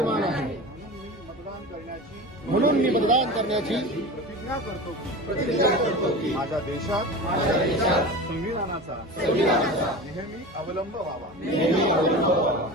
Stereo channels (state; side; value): normal; both; correlation 0.31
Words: आहे। म्हणून मी मतदान करण्याची प्रतिज्ञा करतो की माझ्या देशात संविधानाचा नेहमी अवलंब व्हावा।